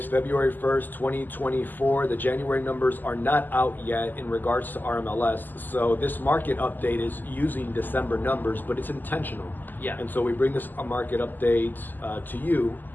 February 1st, 2024. The January numbers are not out yet in regards to RMLS. So this market update is using December numbers, but it's intentional. Yeah. And so we bring this market update to you,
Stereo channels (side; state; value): right; late; 0.088 ms